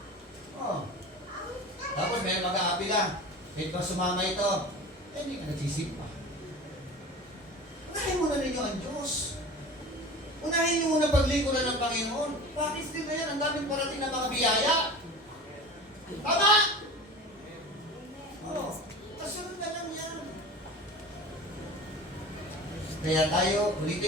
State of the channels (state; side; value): normal; both; correlation 0.35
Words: Oh. Tapos may mag-aapila. Kahit ba sumama ito, eh, hindi ka nagsisimpa. Unahin muna ninyo ang Diyos. Unahin nyo muna paglingkuran ng Panginoon. Bakit din na yan? Ang daming parating na mga biyaya. Tama? Oo. Kasunod na lang yan. Kaya tayo,